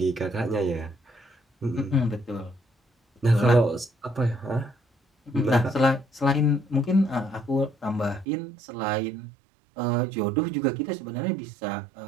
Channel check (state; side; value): drops out; left; at 8.2 s